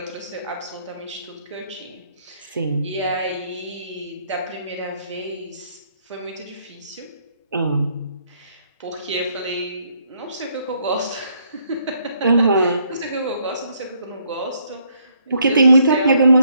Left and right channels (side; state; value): both; inverted; correlation -0.70